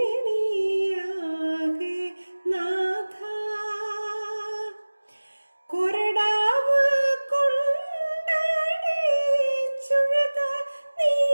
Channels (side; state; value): both; inverted; correlation -1.00